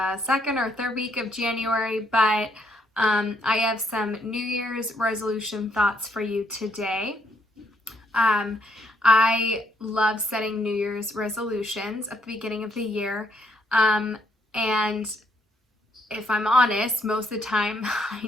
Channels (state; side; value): normal; both; correlation 0.72